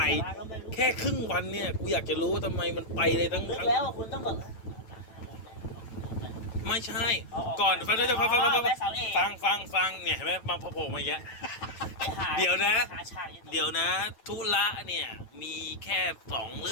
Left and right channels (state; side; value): late; right; 9.1 ms